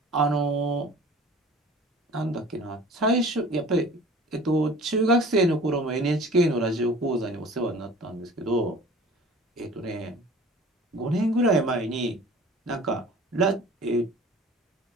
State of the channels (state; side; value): normal; both; correlation 0.45